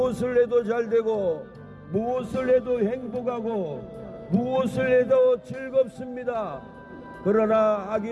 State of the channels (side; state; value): both; identical; correlation 1.00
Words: 해도 잘되고 무엇을 해도 행복하고 무엇을 해도 즐겁습니다. 그러나